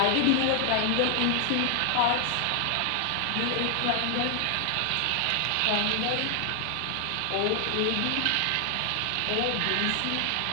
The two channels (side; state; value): both; different; correlation 0.00